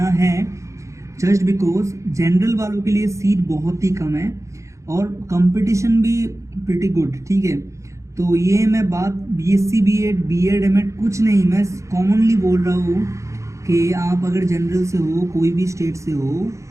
है। जस्ट बिकॉज जनरल वालों के लिए सीट बहुत ही कम है और कंपटीशन भी प्रिटी गुड, ठीक है। तो ये मैं बात BSc B.Ed B.Ed M.Ed कुछ नहीं, मैं कॉमनली बोल रहा हूँ कि आप अगर जनरल से हो, कोई भी स्टेट से हो,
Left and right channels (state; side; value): late; left; 0.15 ms